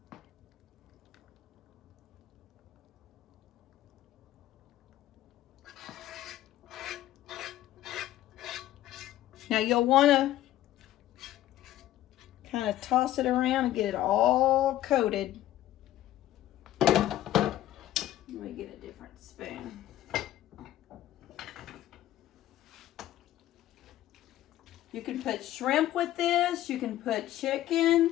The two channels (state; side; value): quieter; right; 13.7 dB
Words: Now you'll want to kind of toss it around and get it all coated. Let me get a different spoon. You can put shrimp with this. You can put